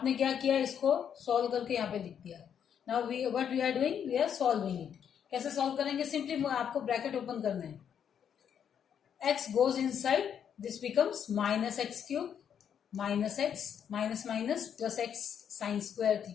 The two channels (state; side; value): quieter; right; 8.4 dB